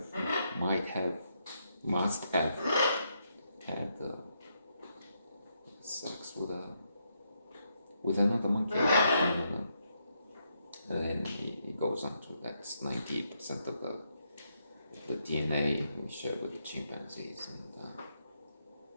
might have, must have had sex with another monkey. And then he goes on to that's 98% of the DNA we share with the chimpanzees, and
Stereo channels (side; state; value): both; inverted; correlation -0.79